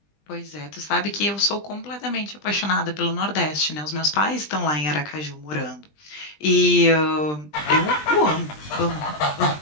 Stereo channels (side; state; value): right; late; 20 ms